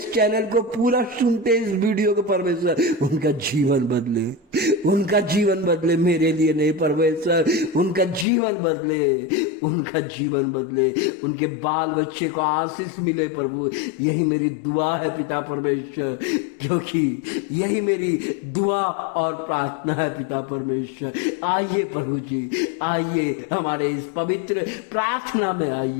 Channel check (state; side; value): drops out; right; at 8.2 s